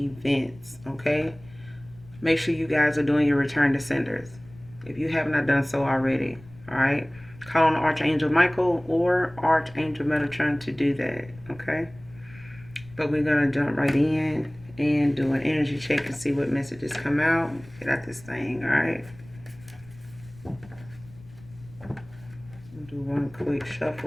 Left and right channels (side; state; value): left; noise; rumble, 22 dB below the sound